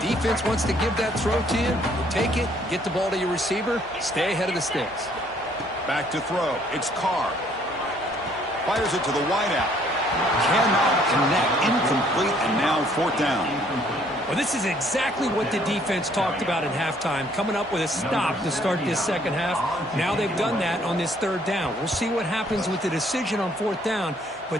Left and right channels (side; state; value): both; normal; correlation 0.63